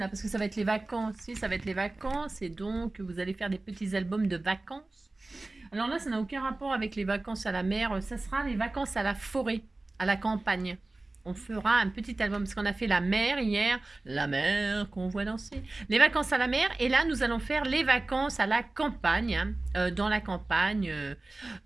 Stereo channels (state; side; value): quieter; left; 3.0 dB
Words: parce que ça va être les vacances. Si, ça va être les vacances, et donc, vous allez faire des petits albums de vacances. Alors là, ça n'a aucun rapport avec les vacances à la mer. Ça sera les vacances à la forêt, à la campagne. On fera un petit album, parce qu'on a fait la mer hier, la mer qu'on voit danser, les vacances à la mer, et là nous allons faire les vacances à la campagne, hein, dans la campagne,